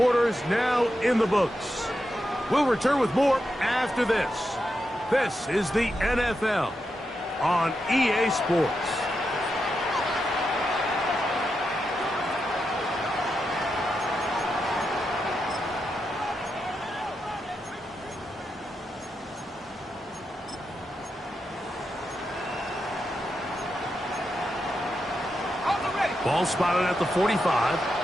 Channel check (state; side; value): normal; both; correlation 0.86